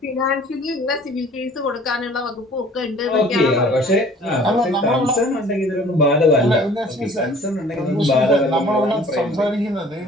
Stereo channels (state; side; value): normal; both; correlation 0.51